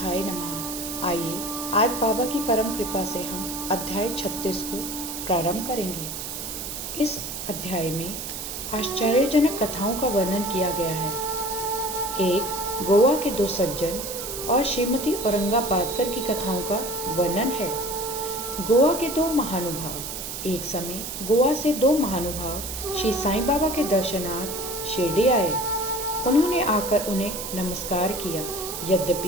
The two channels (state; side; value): noise; right; hiss, 7 dB below the sound